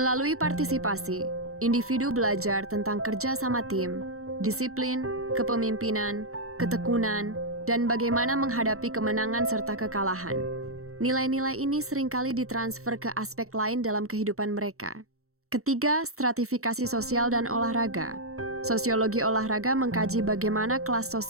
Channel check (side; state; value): left; late; 0.63 ms